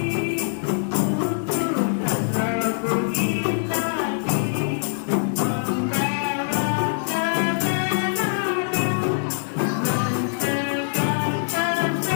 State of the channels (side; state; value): right; silent; digital silence